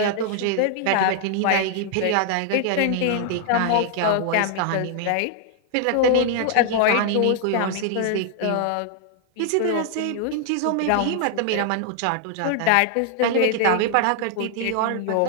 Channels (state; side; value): different; both; correlation 0.00